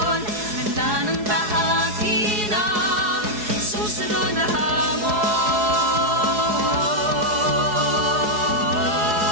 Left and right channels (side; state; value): left; late; 4.7 ms